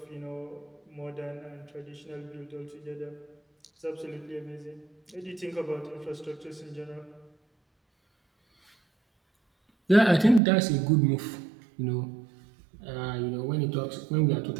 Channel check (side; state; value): left; drops out; at 10.4 s